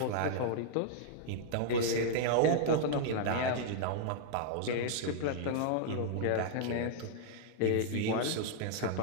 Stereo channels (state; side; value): different; both; correlation -0.01